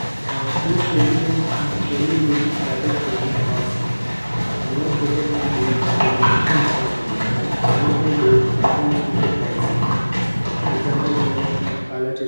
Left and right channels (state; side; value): inverted; both; correlation -1.00